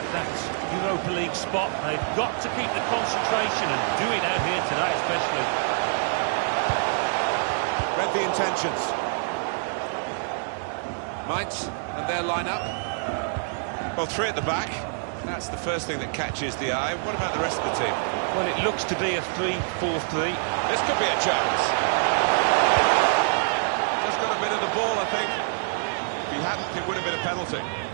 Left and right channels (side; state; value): left; silent; digital silence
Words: that Europa League spot, they've got to keep the concentration and do it out here today especially. Read the intentions. Mainz and their lineup. Well, three at the back. That's the first thing that catches the eye. What about the rest of the team? Well, it looks to be a 3-4-3. This could be a chance. Just got a bit of the ball, I think. If he hadn't, it would have been a penalty.